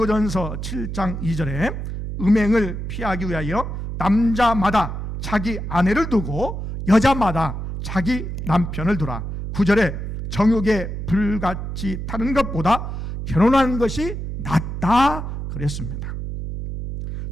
7장 2절에 음행을 피하기 위하여 남자마다 자기 아내를 두고 여자마다 자기 남편을 두라. 9절에 정욕에 불같이 타는 것보다 결혼하는 것이 낫다 그랬습니다.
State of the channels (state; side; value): noise; right; hum, 6 dB below the sound